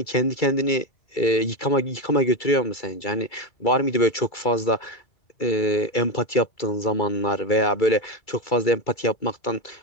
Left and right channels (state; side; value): late; right; 2.3 ms